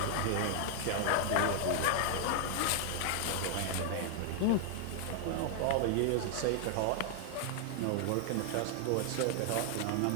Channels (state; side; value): different; both; correlation 0.00